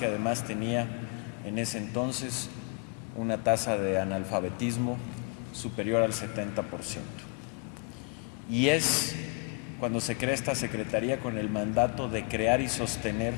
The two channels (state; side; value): quieter; right; 32.9 dB